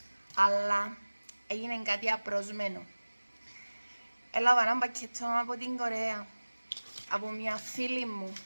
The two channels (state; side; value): inverted; both; correlation -1.00